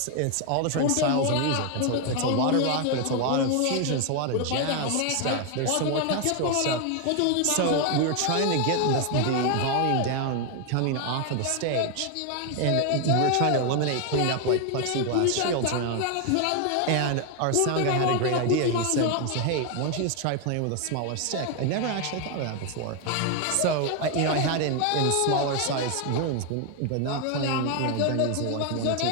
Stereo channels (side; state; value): both; different; correlation 0.01